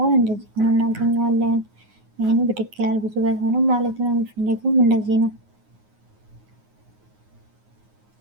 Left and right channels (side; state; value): left; late; 9.5 ms